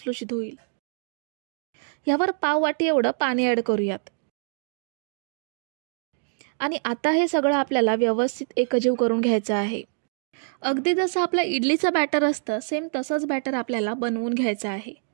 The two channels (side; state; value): left; silent; digital silence